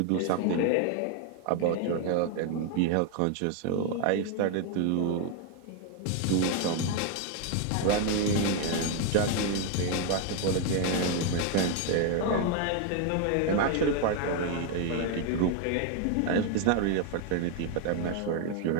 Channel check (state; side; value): different; both; correlation 0.01